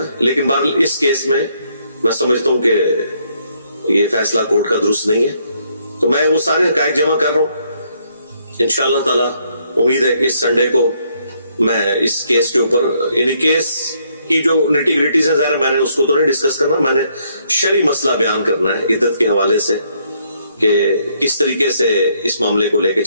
लेकिन बहरहाल इस केस में मैं समझता हूं कि ये फैसला कोर्ट का दुरुस्त नहीं है। तो मैं वो सारे हकायक जमा कर रहा हूं। इंशाअल्लाह ताला उम्मीद है कि इस संडे को मैं इस केस के ऊपर, यानी केस की जो निटी ग्रिटीज है, ज़ाहिर मैंने उसको तो नहीं डिस्कस करना, मैंने शरी मसला बयान करना है इद्दत के हवाले से कि किस तरीके से इस मामले को लेके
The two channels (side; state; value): both; inverted; correlation -0.71